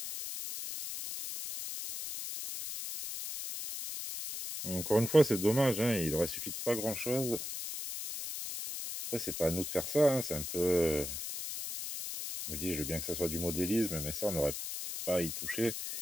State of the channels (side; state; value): left; noise; hiss, 6 dB below the sound